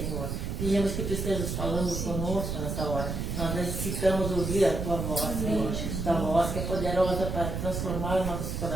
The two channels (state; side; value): noise; right; rumble, 3 dB below the sound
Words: Pedimos que tu estejas falando conosco nessa hora. Nós necessitamos ouvir a tua voz, Senhor. Tua voz que é poderosa para transformar nossos